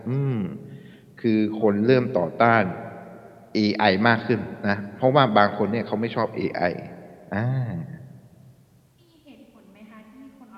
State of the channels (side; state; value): both; identical; correlation 1.00